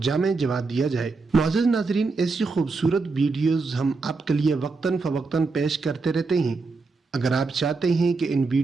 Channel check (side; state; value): left; quieter; 4.1 dB